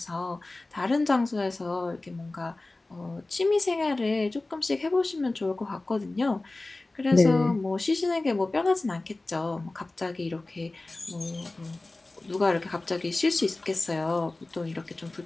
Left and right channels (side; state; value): right; quieter; 3.0 dB